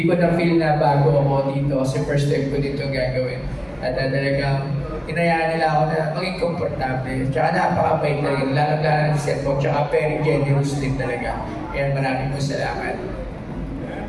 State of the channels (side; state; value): both; identical; correlation 1.00